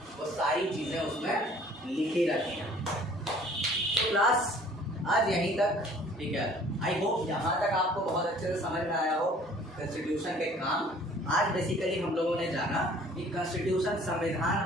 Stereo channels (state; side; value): normal; both; correlation 0.53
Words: वो सारी चीज़ें उसमें लिखी रहती हैं। तो क्लास आज यहीं तक। ठीक है, आई होप यहाँ तक आपको बहुत अच्छे से समझ में आया हो कॉन्स्टिट्यूशन के काम। आज बेसिकली हम लोगों ने जाना कि कॉन्स्टिट्यूशन, संविधान